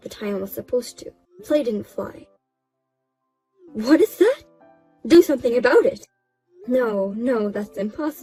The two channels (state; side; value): identical; both; correlation 1.00